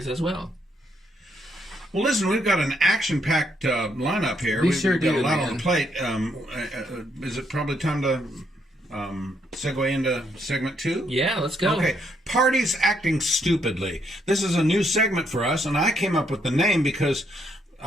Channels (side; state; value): both; normal; correlation 0.74